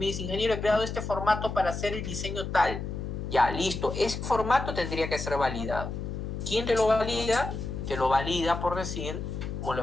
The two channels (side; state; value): left; noise; hum, 5 dB below the sound